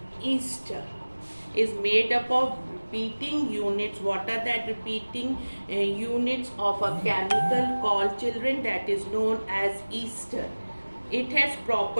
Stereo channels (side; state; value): both; inverted; correlation -1.00